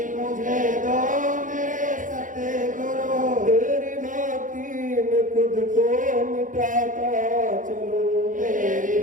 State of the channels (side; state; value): left; late; 0.38 ms